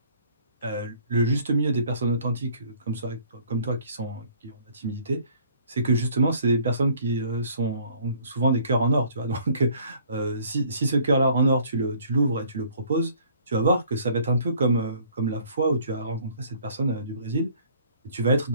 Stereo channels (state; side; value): inverted; both; correlation -0.56